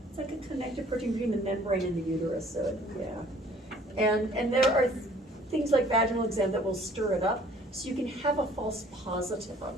It's like a connective protein between the membrane and the uterus, so yeah. And there are things like vaginal exam that will stir it up, so you can have a false positive on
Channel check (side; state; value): both; normal; correlation 0.55